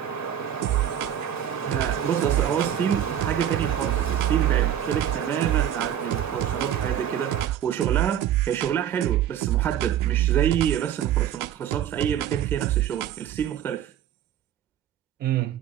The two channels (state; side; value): quieter; left; 10.5 dB